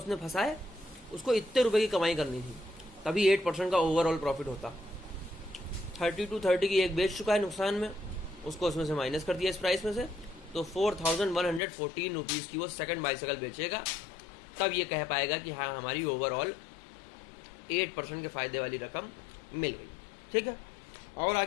फंसाए, उसको इतने रुपए की कमाई करनी थी, तभी 8% का ओवरऑल प्रॉफिट होता। 3230 की एक बेच चुका है नुकसान में, उसको उसमें से माइनस कर दिया इस प्राइस में से, तो 4114 रुपीज़ की वो सेकंड बाइसाइकिल बेचेगा, तब ये कह पाएगा कि हाँ हमारी ओवरऑल 8% के फ़ायदे वाली रकम मिल गई। ठीक है। और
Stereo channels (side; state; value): right; drops out; at 11.6 s